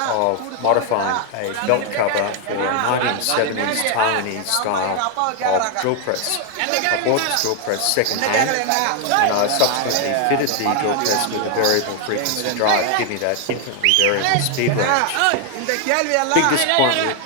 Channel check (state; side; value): different; both; correlation 0.01